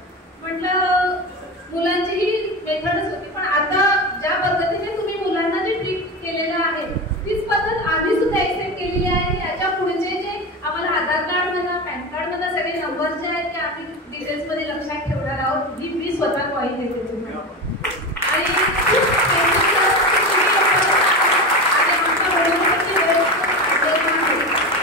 म्हटलं मुलांची ही मेथडच होती, पण आता ज्या पद्धतीने तुम्ही मुलांना जे ट्रीट केलेलं आहे तीच पद्धत आम्ही सुद्धा एक्सेप्ट केलेली आहे. याच्या पुढचे जे आम्हाला आधार कार्ड म्हणा पॅन कार्ड म्हणा सगळे नंबर जे आहेत ते आम्ही डिटेल्स मध्ये लक्षात ठेवणार आहोत. ही मी स्वतः कॉइन देते तुम्हाला.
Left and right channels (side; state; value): both; normal; correlation 0.22